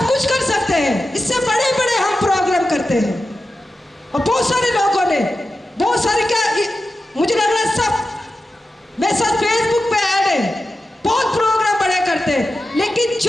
कुछ कर सकते हैं। इससे बड़े बड़े हम प्रोग्राम करते हैं, और बहुत सारे लोगों ने, बहुत सारे, क्या मुझे लग रहा है सब मेरे साथ फेसबुक पे ऐड है, बहुत प्रोग्राम बड़े करते हैं। लेकिन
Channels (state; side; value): normal; both; correlation 0.92